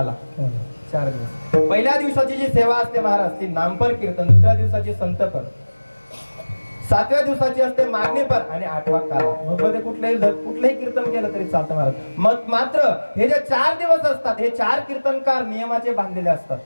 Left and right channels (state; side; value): inverted; both; correlation -1.00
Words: 4 दिवस. पहिल्या दिवसाची जी सेवा असते महाराज ती नामपर कीर्तन, दुसऱ्या दिवसाची संतपर, 7व्या दिवसाची असते मागणीपर आणि 8वा काला. मग मध्ये कुठलंही कीर्तन केलं तरी चालतं महाराज. मग मात्र हे जे 4 दिवस असतात हे 4 कीर्तनकार नियमाचे बांधलेले असतात.